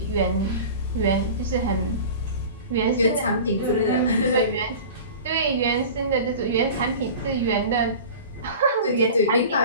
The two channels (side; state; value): both; inverted; correlation -0.37